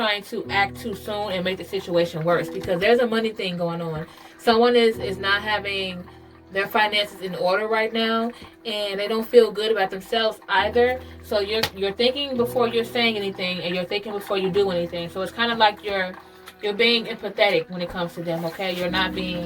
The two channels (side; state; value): both; identical; correlation 1.00